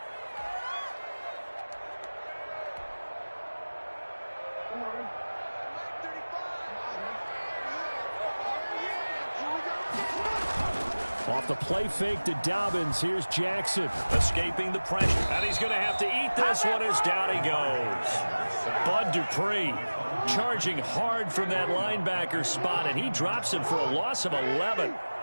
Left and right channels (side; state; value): both; inverted; correlation -1.00